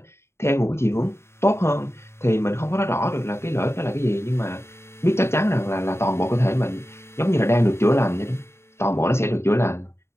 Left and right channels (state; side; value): late; right; 0.13 ms